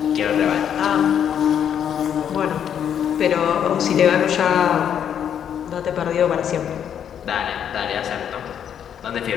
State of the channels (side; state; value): right; quieter; 8.9 dB